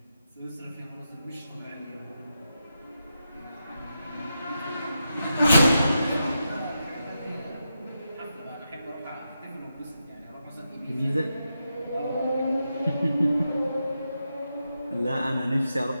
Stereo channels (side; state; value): both; inverted; correlation -0.87